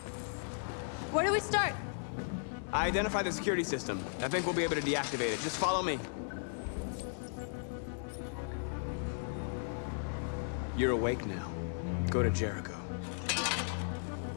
Where do we start? I identified the security system. I think we'll be able to deactivate it. Just follow me. You're awake now. Go to Jericho.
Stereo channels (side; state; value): right; silent; 54 dB below the other